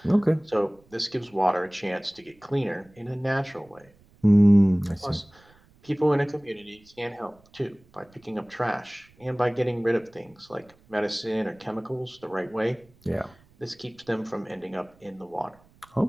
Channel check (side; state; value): right; noise; rumble, 30 dB below the sound